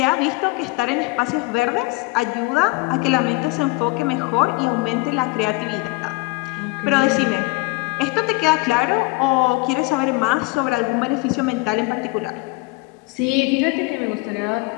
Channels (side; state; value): right; quieter; 24.6 dB